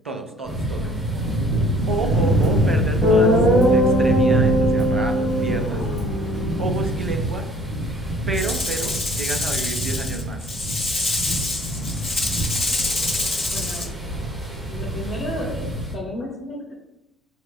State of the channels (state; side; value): normal; both; correlation 0.55